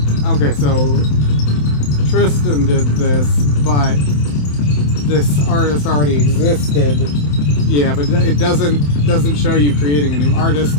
Okay, so Tristan did this, but this artist already existed. Yeah, but it doesn't show you creating a new artist,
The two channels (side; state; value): right; late; 27 ms